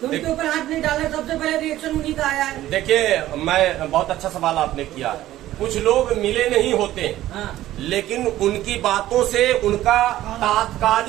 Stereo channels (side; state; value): left; quieter; 14.3 dB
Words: तो उनके ऊपर हाथ नहीं डाला, सबसे पहले रिएक्शन उन्हीं का आया है। देखिए, मैं बहुत अच्छा सवाल आपने किया। कुछ लोग मिले नहीं होते, लेकिन उनकी बातों से उनका